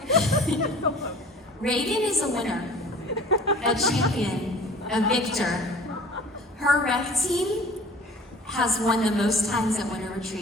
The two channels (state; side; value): normal; both; correlation 0.46